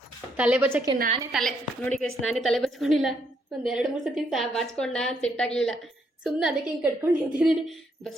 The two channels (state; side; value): normal; both; correlation 0.74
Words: ತಲೆ ಬಚ್ಚಕ್ಕೆ ನಾನೇ ನೋಡಿ ಗೈಸ್, ನಾನೇ ತಲೆ ಬಚ್ಕೊಂಡಿಲ್ಲ. ಒಂದು 2-3 ಸತಿ ಬಾಚ್ಕೊಂಡ, ಸೆಟ್ ಆಗಲಿಲ್ಲ. ಸುಮ್ಮನೆ ಅದಕ್ಕೆ ಹಿಂಗೆ ಕಟ್ಕೊಂಡು ನಿಂತಿದ್ದೀನಿ.